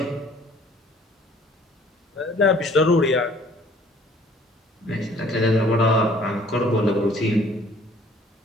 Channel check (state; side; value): normal; both; correlation 0.56